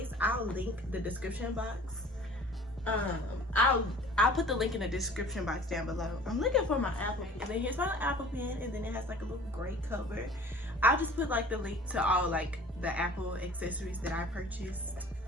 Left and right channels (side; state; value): both; normal; correlation 0.47